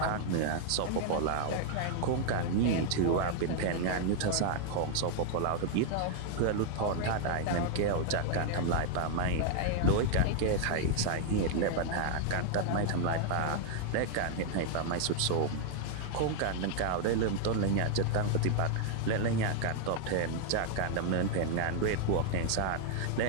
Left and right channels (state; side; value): different; both; correlation 0.00